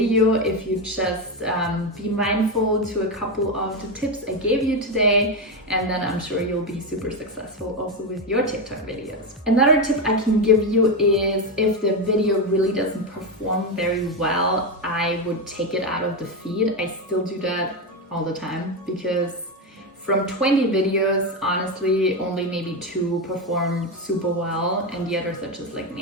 if you just be mindful to a couple of the tips I gave you today, and then I'm sure you'll be super successful also with your TikTok videos. Another tip I can give you is if the video really doesn't perform very well, I would take it out of the feed. I still do that all the time because from 20 videos, honestly, only maybe 2 perform super well and the others are just like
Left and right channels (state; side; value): normal; both; correlation 0.11